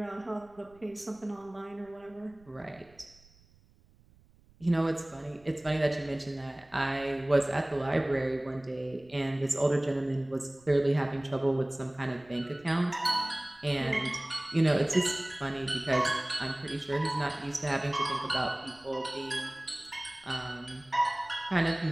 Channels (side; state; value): right; noise; rumble, 29 dB below the sound